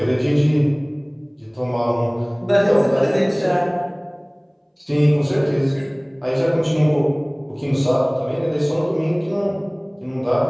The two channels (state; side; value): identical; both; correlation 1.00